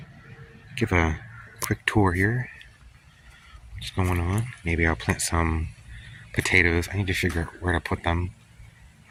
give a quick tour here. What's going on? Maybe I'll plant some potatoes. I need to figure out where to put them.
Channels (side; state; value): both; identical; correlation 1.00